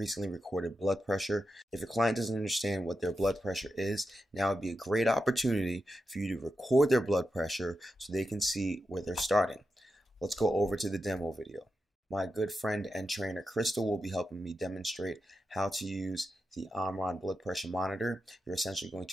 recorded blood pressure. If your client doesn't understand what their blood pressure is, now would be a great opportunity for you to record their blood pressure so they can see where they're starting. Let's go over to the demo video. My good friend and trainer Crystal will be helping me demonstrate how to use the Omron blood pressure monitor. You're essentially going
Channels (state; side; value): normal; both; correlation 0.88